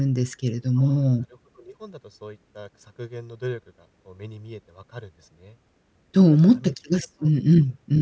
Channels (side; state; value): both; identical; correlation 1.00